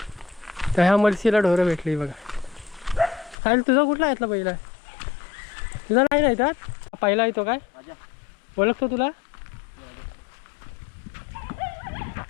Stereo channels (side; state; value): right; drops out; at 3.4 s